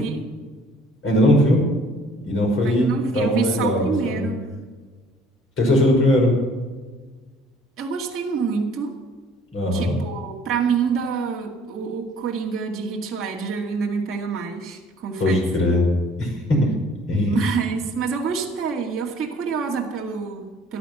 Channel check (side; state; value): both; normal; correlation 0.56